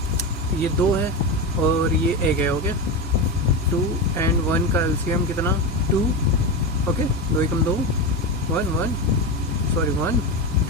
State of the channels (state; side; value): normal; both; correlation 0.18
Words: ये 2 है और ये 1 है, ओके। 2 and 1 का एलसीएम कितना 2, ओके। 2 एकम 2, 1 1, सॉरी 1,